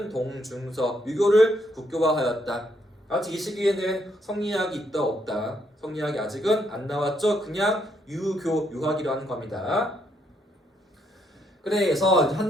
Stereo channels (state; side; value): normal; both; correlation 0.74